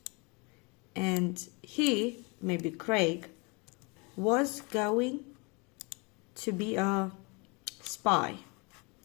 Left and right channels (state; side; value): quieter; right; 30.0 dB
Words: And he, maybe Craig, was going to be a spy.